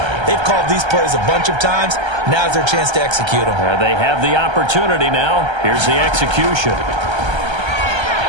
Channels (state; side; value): late; left; 1.3 ms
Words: They've called these plays a bunch of times. Now's their chance to execute them. They have the opportunity now. Here's the execution.